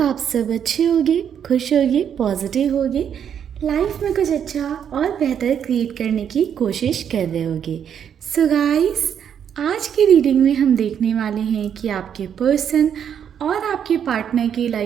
आप सब अच्छे होगे, खुश होगे, पॉजिटिव होगे, लाइफ में कुछ अच्छा और बेहतर क्रिएट करने की कोशिश कर रहे होगे। सो गाइस, आज की रीडिंग में हम देखने वाले हैं कि आपके पर्सन और आपके पार्टनर की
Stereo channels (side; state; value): left; quieter; 8.5 dB